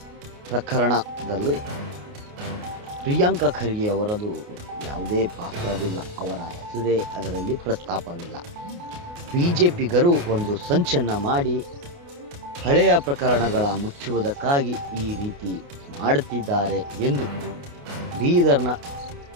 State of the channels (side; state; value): left; late; 29 ms